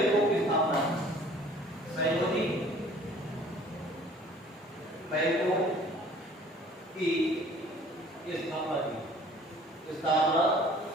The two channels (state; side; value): normal; both; correlation 0.52